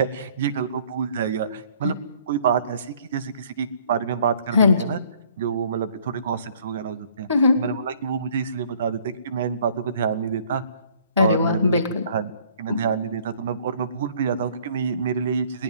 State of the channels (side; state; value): both; inverted; correlation -0.58